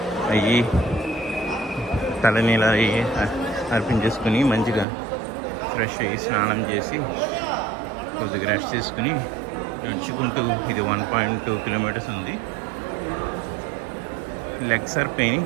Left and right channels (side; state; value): left; drops out; at 4.9 s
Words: అయ్యి తలనీలా అయ్యి అర్పించేసుకుని మంచిగా ఫ్రెష్ అయ్యి స్నానం చేసి కొద్దిగా రెస్ట్ చేసుకుని నడుచుకుంటూ, ఇది 1.2 kilometers ఉంది. Legs are pain